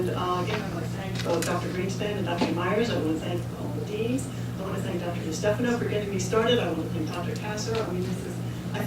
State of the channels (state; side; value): identical; both; correlation 1.00